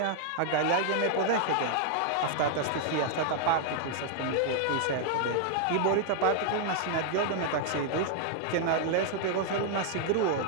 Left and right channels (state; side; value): different; both; correlation 0.00